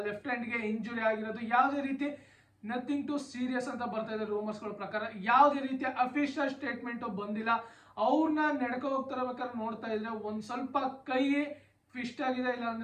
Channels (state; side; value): identical; both; correlation 1.00